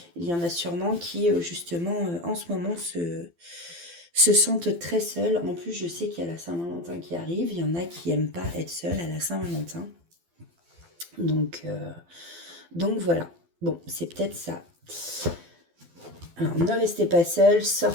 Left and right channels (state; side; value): late; left; 12 ms